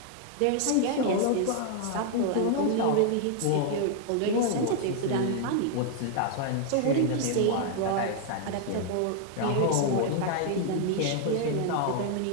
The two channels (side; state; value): both; different; correlation 0.00